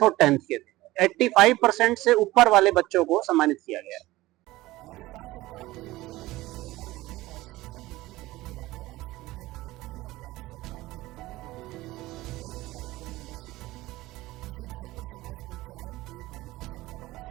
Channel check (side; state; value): left; quieter; 18.2 dB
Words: और 10th के थे। 85% से ऊपर वाले बच्चों को सम्मानित किया गया। राजस्थान सरकार में ऊर्जा मंत्री हीरालाल नागर और शिक्षा मंत्री मदन दिलावर आज कोटा दौरे पर रहे और राज्य सरकार के दोनों मंत्रियों ने कई कार्यक्रमों में शिरकत की। श्री धाकड़ समाज पंचायत के बालिका छात्रावास